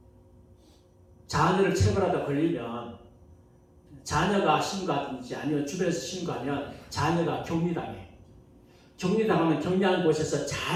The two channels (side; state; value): both; identical; correlation 1.00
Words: 자녀를 체벌하다 걸리면 자녀가 신고하든지 아니면 주변에서 신고하면 자녀가 격리당해. 격리당하면 격리하는 곳에서